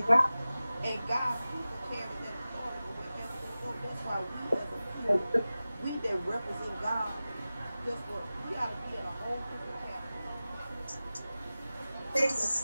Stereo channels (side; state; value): both; inverted; correlation -0.96